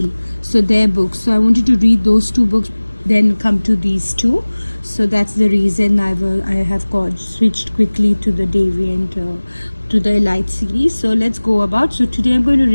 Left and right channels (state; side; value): inverted; both; correlation -1.00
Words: So their books. So I wanted to read those 2 books, then come to these 2. So that's the reason I have switched quickly to the Deviant to the Elite series. So let's go about. So today I'm going to